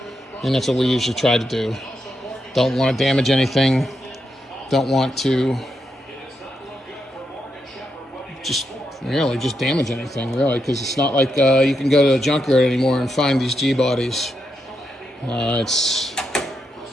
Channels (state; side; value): normal; both; correlation 0.83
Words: And that's what we usually try to do. Don't want to damage anything. Don't want to just damage anything, really, because it's not like you can go to a junkyard anymore and find these G-bodies.